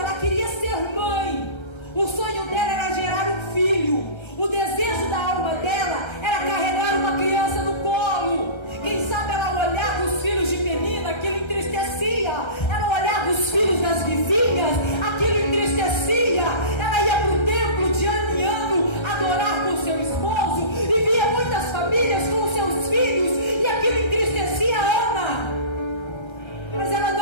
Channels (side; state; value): right; late; 1.3 ms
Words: queria ser mãe. O sonho dela era gerar um filho. O desejo da alma dela era carregar uma criança no colo. Quem sabe ela olhava os filhos de Penina, aquilo entristecia. Ela olhava os filhos das vizinhas, aquilo entristecia. Ela ia para o templo de ano em ano adorar com seu esposo e via muitas famílias com seus filhos, e aquilo entristecia Ana. Mas ela